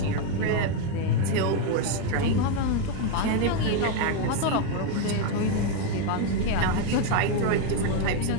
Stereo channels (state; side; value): different; both; correlation 0.01